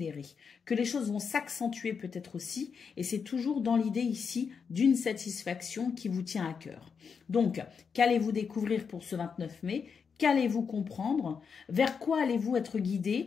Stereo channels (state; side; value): quieter; right; 6.1 dB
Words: que les choses vont s'accentuer peut-être aussi et c'est toujours dans l'idée ici d'une satisfaction qui vous tient à cœur. Donc, qu'allez-vous découvrir pour ce 29 mai ? Qu'allez-vous comprendre? Vers quoi allez-vous être